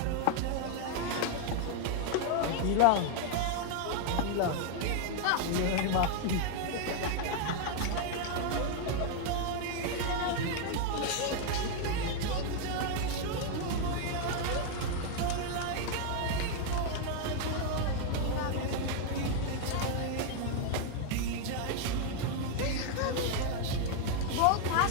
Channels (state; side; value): different; both; correlation 0.00